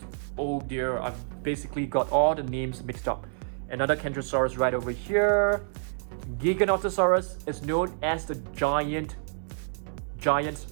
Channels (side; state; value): left; silent; digital silence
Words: oh dear, I've basically got all the names mixed up. Another Carnotaurus right over here. Geekonotosaurus is known as the giant